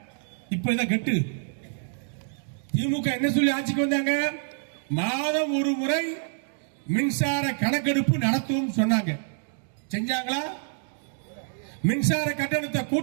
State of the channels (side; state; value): left; silent; digital silence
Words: இப்ப இதை கட்டு. திமுக என்ன சொல்லி ஆட்சிக்கு வந்தாங்க? மாதம் ஒரு முறை மின்சார கணக்கெடுப்பு நடத்தும் சொன்னாங்க. செஞ்சாங்களா? மின்சார கட்டணத்தை